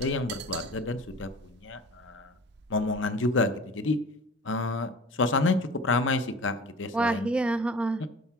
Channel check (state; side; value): normal; both; correlation 0.41